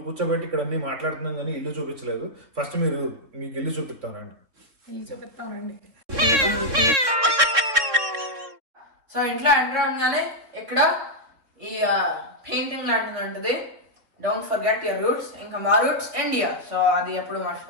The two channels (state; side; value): late; left; 3.6 ms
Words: కూర్చోబెట్టి ఇక్కడ అన్ని మాట్లాడుతున్నాం కానీ ఇల్లు చూపించలేదు. ఫస్ట్ మీకు ఇల్లు చూపిస్తానండి. సో ఇంట్లో ఎంటర్ అవగానే ఇక్కడ ఈ పెయింటింగ్ లాంటిది ఉంటుంది, డోంట్ ఫర్గెట్ యువర్ రూట్స్. ఇంకా మా రూట్స్ ఇండియా, సో అది ఎప్పుడు